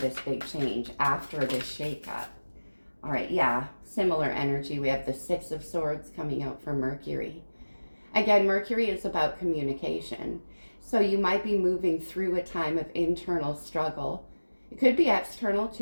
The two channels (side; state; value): both; inverted; correlation -1.00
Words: big change, after this shakeup. All right, yeah, similar energy. We have the 6 of Swords coming out for Mercury. Again, Mercury is about communication. So you might be moving through a time of internal struggle. It could be external